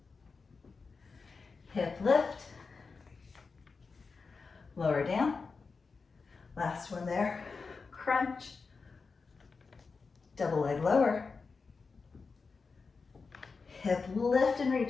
Hip lift. Lower down. Last one there. Crunch. Double leg lower. Hip lift and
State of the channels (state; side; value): quieter; right; 4.6 dB